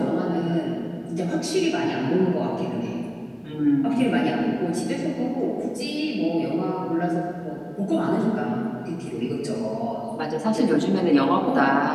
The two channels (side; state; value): both; identical; correlation 1.00